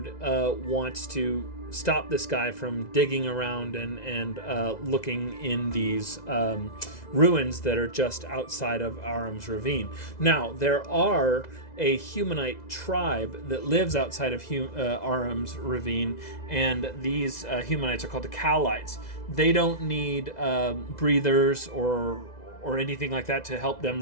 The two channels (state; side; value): late; right; 2.0 ms